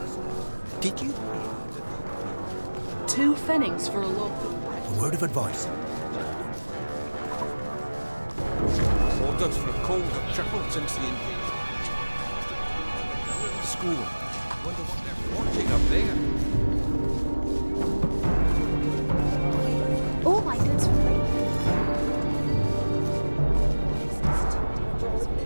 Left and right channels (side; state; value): both; inverted; correlation -1.00